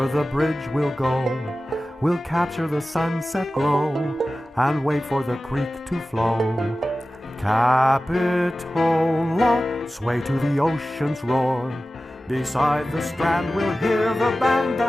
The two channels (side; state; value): both; normal; correlation 0.95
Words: the bridge we'll go. We'll capture the sunset glow and wait for the creek to flow. Capitola, sway to the ocean's roar. Beside the strand we'll hear the band